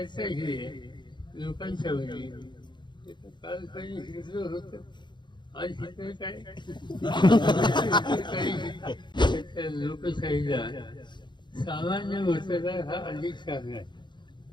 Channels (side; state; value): right; late; 0.22 ms